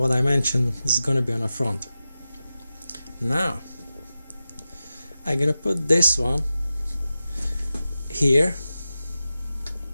I mentioned is going to be on the front. Now I'm gonna put this one here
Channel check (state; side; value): inverted; both; correlation -0.93